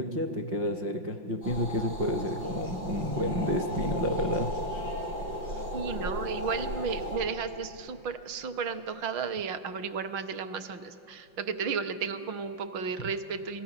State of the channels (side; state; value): left; late; 5.7 ms